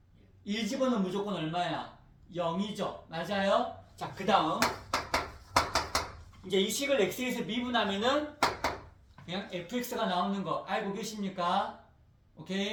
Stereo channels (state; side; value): identical; both; correlation 1.00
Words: 1 집어넣으면 무조건 얼마야? 0이죠. 맞아요? 자, 그 다음 이제 이 식을 x에서 미분하면은 그냥 fx가 나오는 거 알고 계십니까?